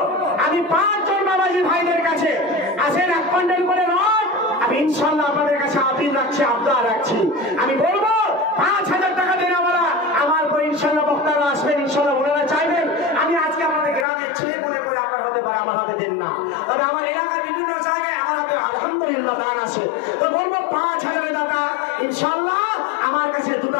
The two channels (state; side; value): drops out; right; at 14.1 s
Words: আমি 5 জন বাবাজি ভাইদের কাছে আসেন 1 কুইন্টাল করে রড, আমি ইনশাআল্লাহ আপনাদের কাছে আপিল রাখছি, আবদার রাখছি। আমি বলবো 5,000 টাকা দেওয়ালা আমার পর ইনশাআল্লাহ বক্তারা আসবেন, ইনশাআল্লাহ ওনারা চাইবেন আমি আজকে আপনাদের গ্রামের ছেলে মনে করে আপনার হতে পারে, আমার হাতে দেন না। তবে আমার এলাকার বিভিন্ন জায়গায় আমার হাতে আলহামদুলিল্লাহ দান আছে, তো বলবো 5,000 টাকা ইনশাআল্লাহ আমার কাছে